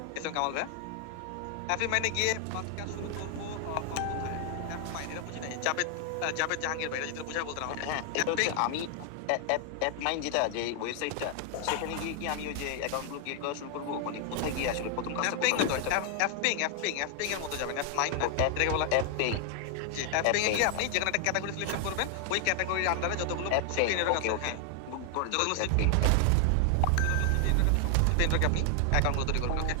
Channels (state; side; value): different; both; correlation 0.00